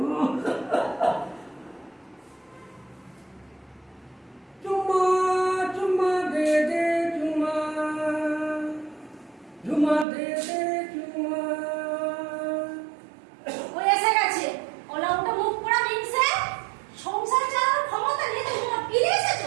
চুম্মা চুম্মা দে দে চুম্মা, ঝুমা দে দে চুম্মা। ওই এসে গেছে ওলা ওটা মুখ পোড়া মিনছে সংসার চালানোর ক্ষমতা নিয়ে তুমি না ফিরে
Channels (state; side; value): drops out; left; at 10.1 s